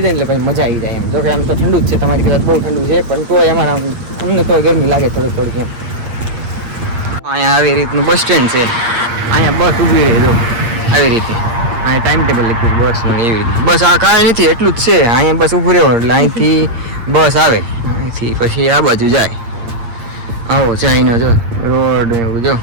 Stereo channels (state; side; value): late; left; 8.7 ms